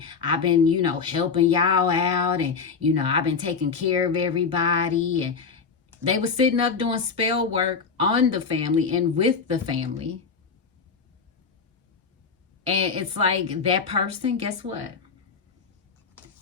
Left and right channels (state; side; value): quieter; right; 5.5 dB